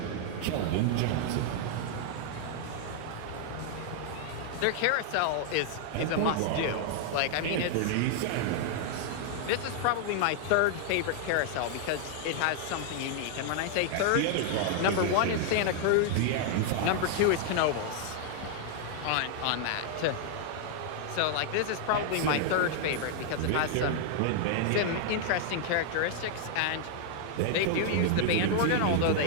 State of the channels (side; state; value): both; different; correlation 0.00